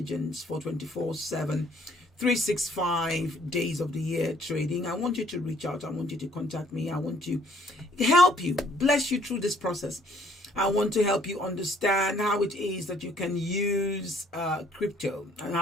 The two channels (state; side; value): normal; both; correlation 0.62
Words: for 24/7, 365 days of the year trading, I want you to reach out. I want you to contact me. I want to help you, bless you through this process. I want to help you understand how it is that you can use crypto, and